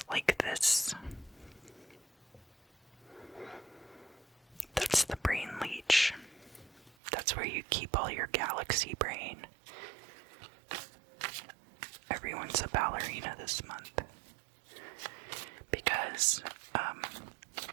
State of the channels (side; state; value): left; drops out; at 7.0 s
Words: like this. That's the brain leech. That's where you keep all your galaxy brain. Everyone's a ballerina this month. Because,